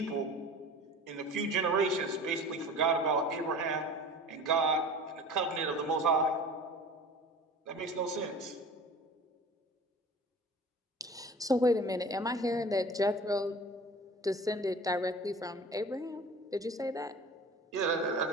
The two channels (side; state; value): both; normal; correlation 0.41